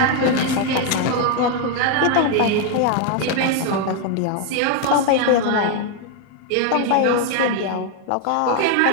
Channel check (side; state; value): both; different; correlation 0.01